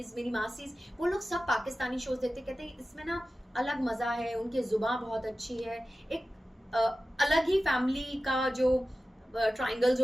मेरी मासीज, वो लोग सब पाकिस्तानी शोज देखते, कहते हैं इसमें ना अलग मजा है, उनकी जुबान बहुत अच्छी है, एक अलग ही फैमिली का जो ट्रायंगल्स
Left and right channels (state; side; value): normal; both; correlation 0.95